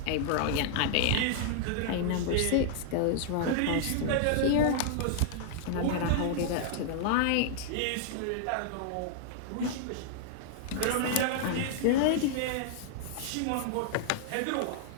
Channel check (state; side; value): different; both; correlation -0.01